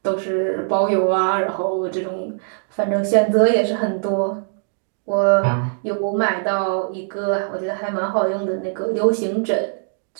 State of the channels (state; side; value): silent; left; digital silence